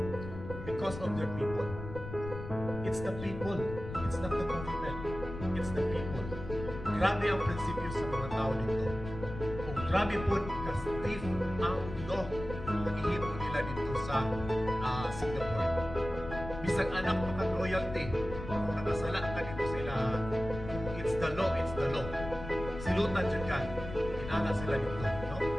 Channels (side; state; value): left; noise; rumble, 10 dB below the sound